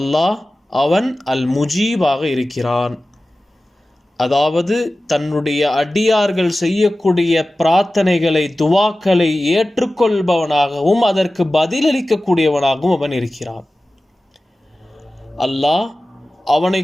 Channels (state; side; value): normal; both; correlation 0.96